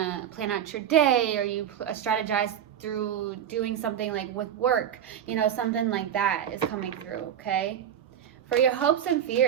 plan out your day, or you strategize through doing something like with work, you know, something like that is coming through, okay? For your hopes and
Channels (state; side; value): quieter; left; 9.7 dB